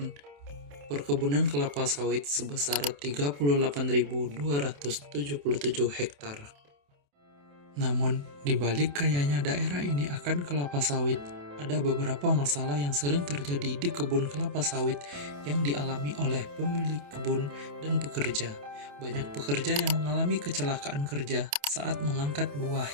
perkebunan kelapa sawit sebesar 38.277 hektar. Namun, di balik kayanya daerah ini akan kelapa sawit, ada beberapa masalah yang sering terjadi di kebun kelapa sawit yang dialami oleh pemilik kebun dan pekerja. Banyak pekerja yang mengalami kecelakaan kerja saat mengangkat buah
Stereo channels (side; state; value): left; late; 28 ms